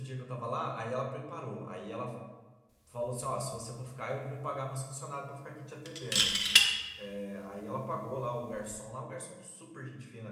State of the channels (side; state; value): both; identical; correlation 1.00